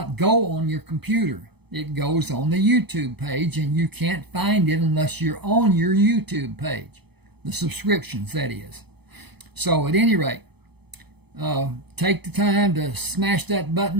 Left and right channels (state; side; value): late; left; 0.98 ms